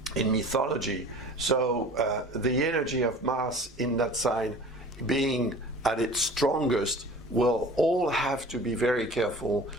mythology. So the energy of Mars in that sign being at its strongest, we'll all have to be very careful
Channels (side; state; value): both; normal; correlation 0.43